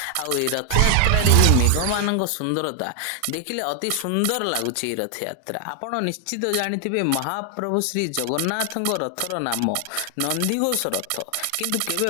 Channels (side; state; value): both; different; correlation 0.00